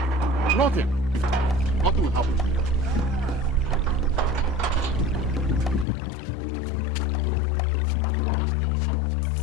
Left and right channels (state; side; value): drops out; right; at 5.9 s